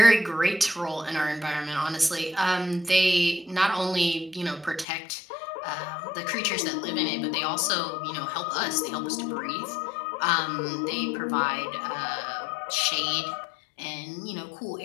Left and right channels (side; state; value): right; drops out; at 4.9 s